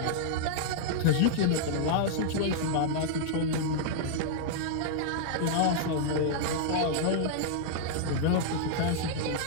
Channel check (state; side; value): different; both; correlation -0.01